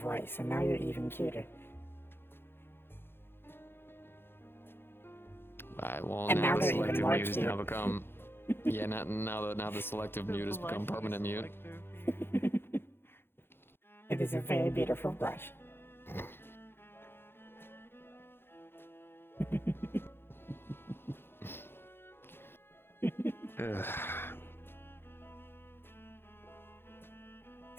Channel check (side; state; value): right; late; 0.11 ms